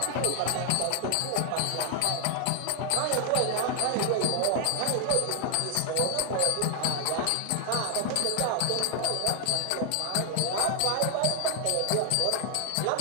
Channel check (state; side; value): different; both; correlation 0.00